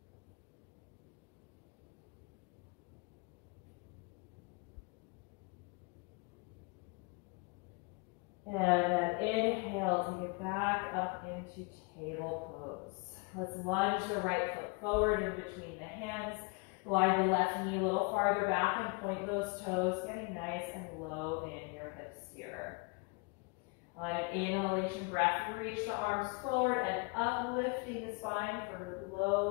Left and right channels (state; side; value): quieter; right; 29.6 dB